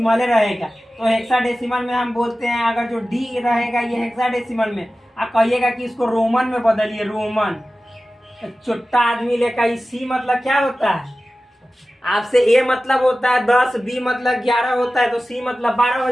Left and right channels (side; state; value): both; normal; correlation 0.95